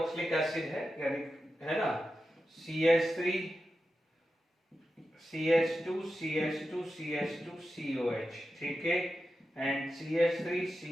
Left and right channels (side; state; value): both; normal; correlation 0.91